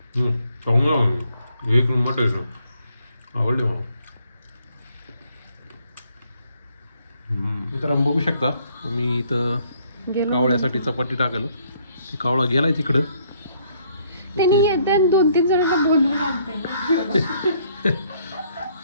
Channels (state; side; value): inverted; both; correlation -0.67